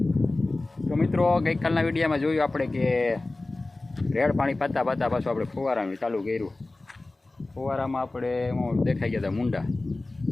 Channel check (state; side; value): quieter; right; 3.0 dB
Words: તો મિત્રો ગઈકાલના વિડીયોમાં જોયું આપણે કે રેડ પાણી પાતા પાતા પાછું આપણે ફુવારાનું ચાલુ કર્યું। ફુવારામાં આપણે દેખાઈ ગયા હતા મુંડા,